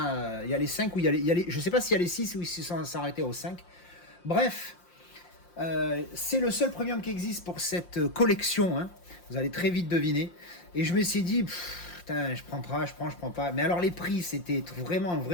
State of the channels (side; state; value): right; late; 5.7 ms